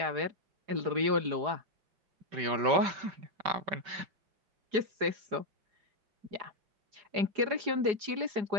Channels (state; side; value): late; left; 4.8 ms